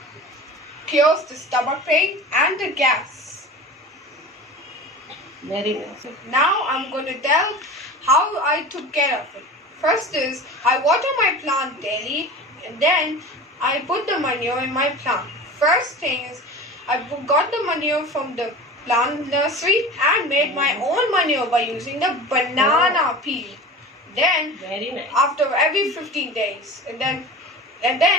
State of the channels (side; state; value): both; normal; correlation 0.35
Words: cures the stomach pain and the gas. Very nice. Now I'm going to tell how I took care of it. First is I water my plant daily and then I put the manure in my plant. First thing is I got the manure from the plant nursery and made my own manure by using the banana peel. Then Very nice. after every 15 days and then